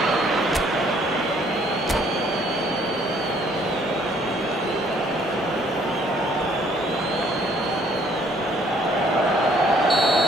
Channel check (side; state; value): both; normal; correlation 0.63